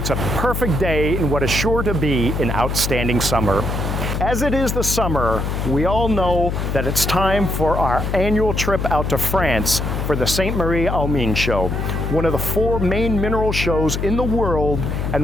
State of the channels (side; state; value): left; noise; hum, 2 dB below the sound